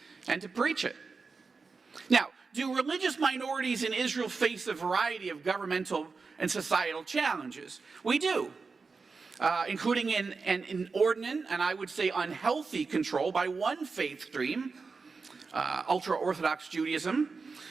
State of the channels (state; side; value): quieter; left; 4.5 dB